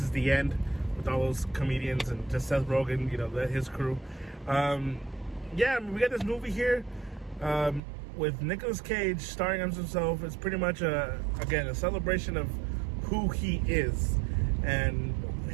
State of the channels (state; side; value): drops out; left; at 7.8 s